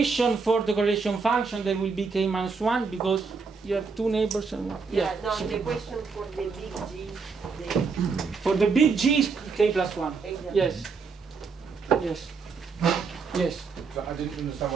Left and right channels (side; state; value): left; quieter; 4.9 dB